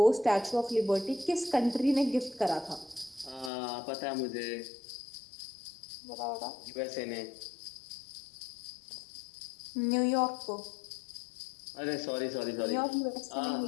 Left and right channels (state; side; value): drops out; right; at 3.5 s